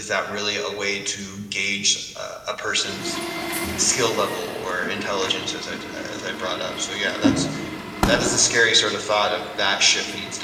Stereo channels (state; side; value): identical; both; correlation 1.00